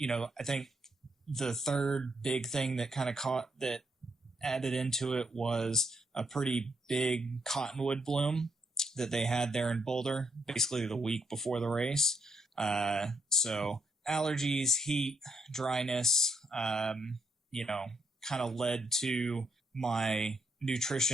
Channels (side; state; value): both; normal; correlation 0.76